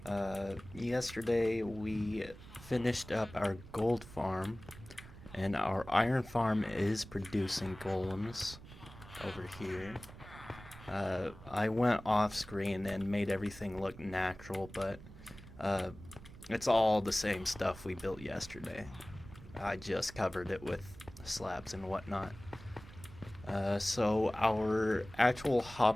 Yesterday we finished up our gold farm, and our iron farm is producing golems over here. I went off screen and made everything look natural, but it's all the same stuff we built yesterday. I just covered it with slabs and whatnot. So our actual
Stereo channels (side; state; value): right; noise; rumble, 17 dB below the sound